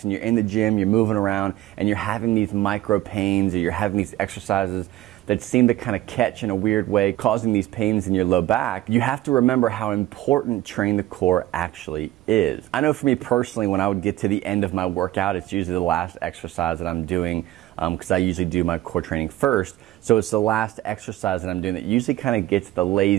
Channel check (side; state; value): left; quieter; 15.4 dB